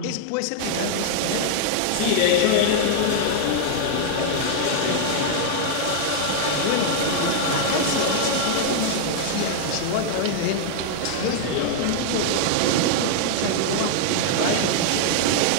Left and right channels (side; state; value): both; different; correlation 0.00